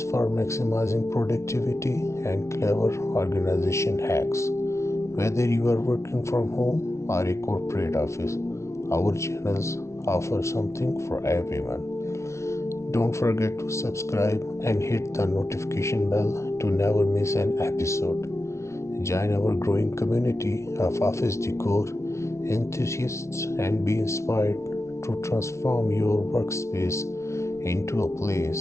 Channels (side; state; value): right; late; 0.13 ms